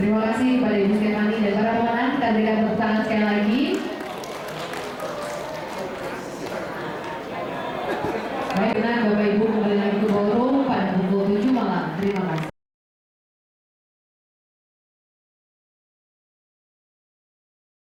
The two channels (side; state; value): both; identical; correlation 1.00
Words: Terima kasih kepada Ibu Stefani dan para pemenang. Kita berikan tepuk tangan sekali lagi. Baik, benar Bapak Ibu kembali lagi ke ballroom pada pukul 7 malam. Terima kasih.